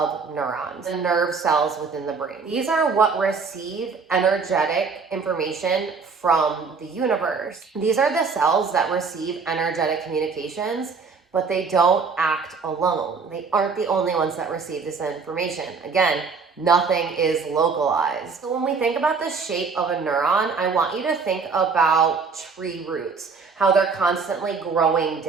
neurons, the nerve cells within the brain. These are what receive energetic information from the universe. These are the cells that receive energetic communications, but they don't act alone. They aren't the only ones that receive this information. Again, nothing is localized. So when we think about the shape of a neuron, I want you to think about tree roots, how they're constantly growing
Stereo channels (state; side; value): quieter; left; 5.1 dB